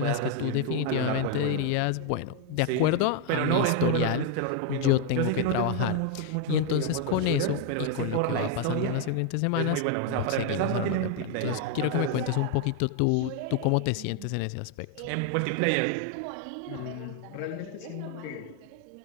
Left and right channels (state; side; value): different; both; correlation 0.01